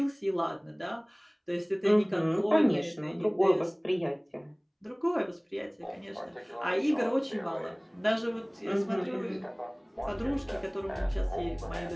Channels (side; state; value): both; identical; correlation 1.00